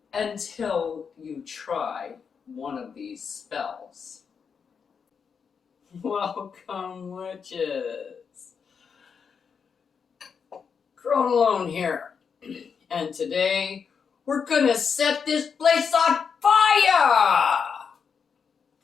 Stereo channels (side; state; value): right; quieter; 6.3 dB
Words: until you try one of these spells. Welcome, witches. Crone Alone here, and today we're gonna set this place on fire!